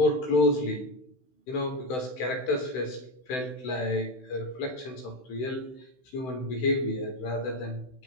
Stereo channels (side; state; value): right; late; 16 ms